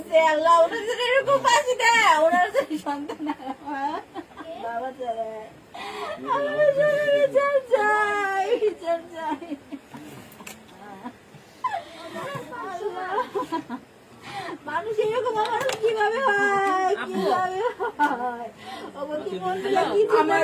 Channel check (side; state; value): both; identical; correlation 1.00